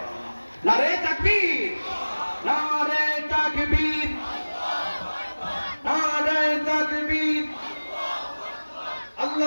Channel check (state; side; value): inverted; both; correlation -1.00